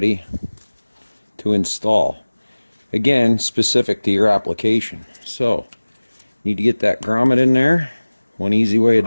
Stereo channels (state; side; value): inverted; both; correlation -1.00